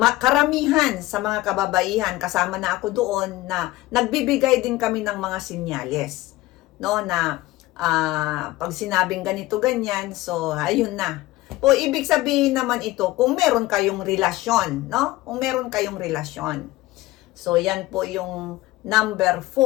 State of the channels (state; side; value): quieter; right; 17.9 dB